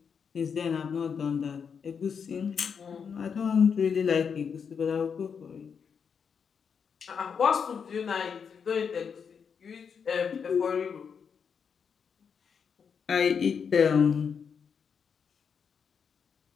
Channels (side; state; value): right; quieter; 6.6 dB